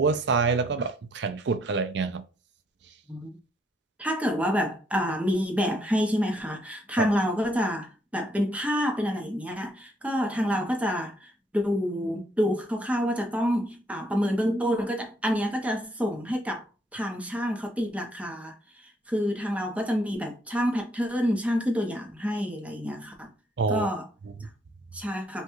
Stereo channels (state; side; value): normal; both; correlation 0.69